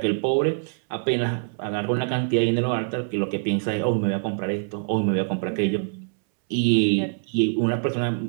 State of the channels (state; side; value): silent; left; 62 dB below the other